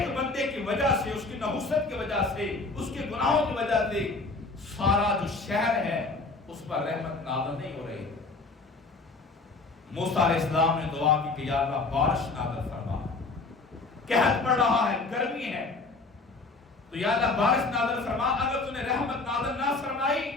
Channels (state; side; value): quieter; right; 3.7 dB